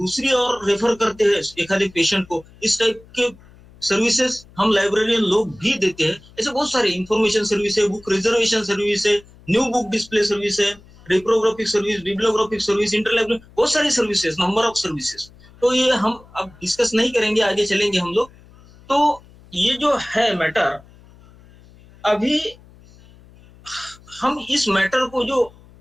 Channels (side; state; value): left; noise; hum, 25 dB below the sound